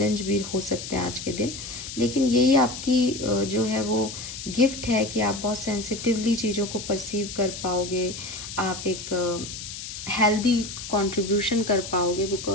भी हो सकते हैं आज के दिन, लेकिन यही आपकी जो है वो गिफ्ट है कि आप बहुत सेंसिटिवली चीज़ों को परसीव कर पाओगे, आप एक हेल्दी कंट्रीब्यूशन कर पाओगे,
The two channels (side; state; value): left; noise; hiss, 9 dB below the sound